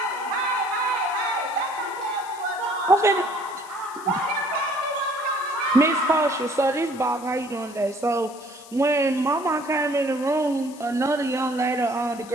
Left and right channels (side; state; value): left; noise; hiss, 20 dB below the sound